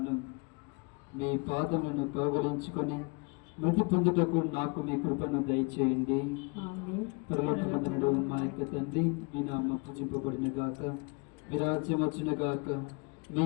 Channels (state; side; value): quieter; right; 31.4 dB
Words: మీ పాదములను కౌగలించుకొని మృతి పొందుటకు నాకు మీ కృపను దయచేయండి. పరలోకమందునుడు మా యొక్క తండ్రి, మీ నామము పూజింపబడిన గాక, మీ రాజ్యం వచ్చున గాక, మీ